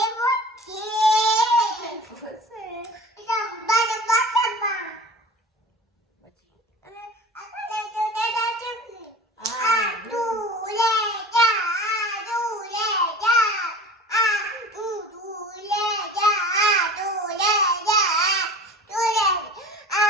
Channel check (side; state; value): both; normal; correlation 0.39